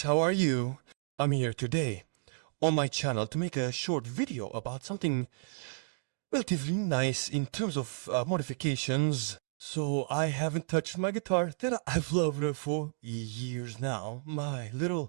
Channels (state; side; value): silent; left; digital silence